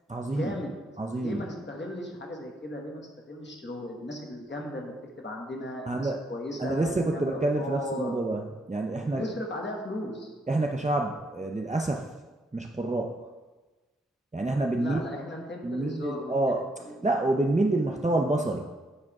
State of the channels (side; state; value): both; normal; correlation 0.75